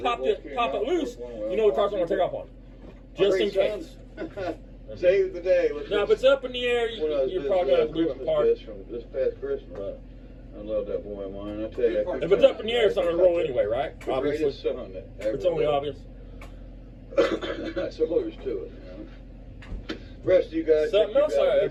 it loose. You know the car's not going to take off on you. Just in case. Save the day. Now, if it's up in the air, you're probably going to have to leave it apart. From this past Christmas. I love that boy of mine. I tell you. If it's up in the air, it's not going to roll anyway, right? Obviously. It's only obvious. That's all there's to it. You know? Rest of you guys. Something else I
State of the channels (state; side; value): identical; both; correlation 1.00